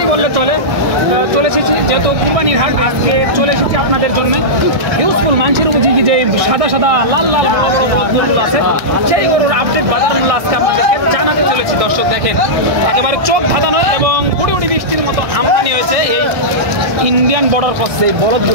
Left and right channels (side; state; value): left; late; 1.6 ms